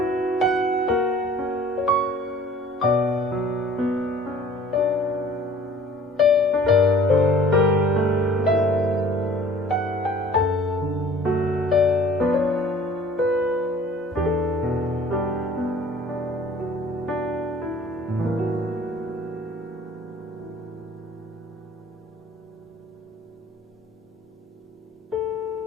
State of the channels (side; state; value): both; normal; correlation 0.51